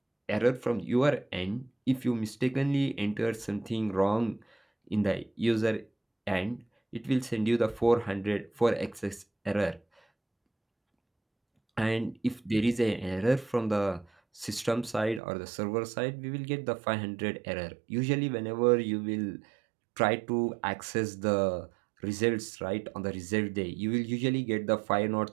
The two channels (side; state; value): left; drops out; at 15.2 s